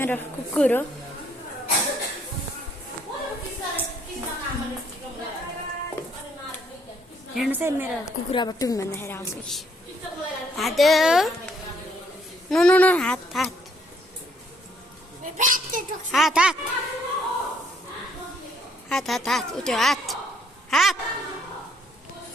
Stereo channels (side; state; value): both; normal; correlation 0.68